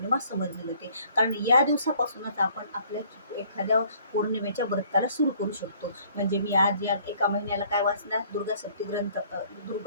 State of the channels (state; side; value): inverted; both; correlation -0.58